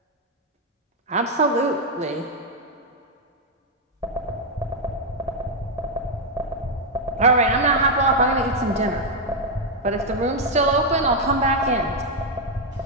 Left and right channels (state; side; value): normal; both; correlation 0.00